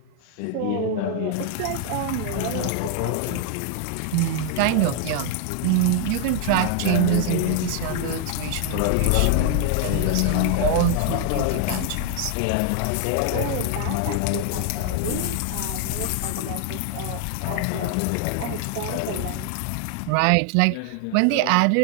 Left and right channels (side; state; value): both; different; correlation 0.00